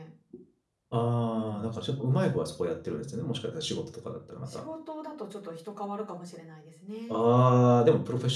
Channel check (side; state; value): both; identical; correlation 1.00